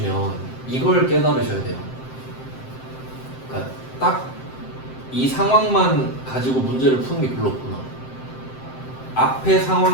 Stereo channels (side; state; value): right; late; 7.7 ms